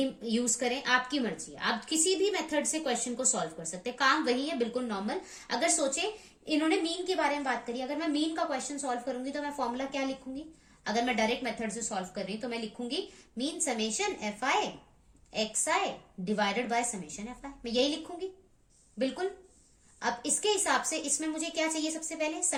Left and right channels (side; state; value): both; identical; correlation 1.00